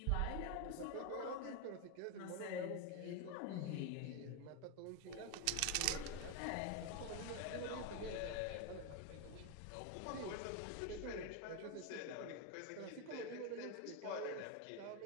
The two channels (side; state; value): both; different; correlation 0.02